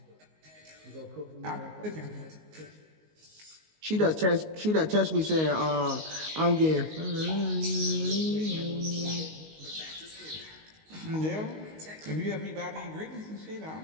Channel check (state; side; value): late; left; 19 ms